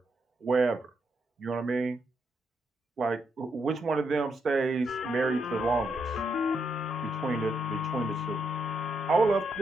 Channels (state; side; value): normal; both; correlation 0.79